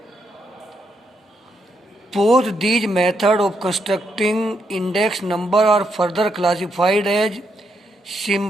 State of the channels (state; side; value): normal; both; correlation 0.79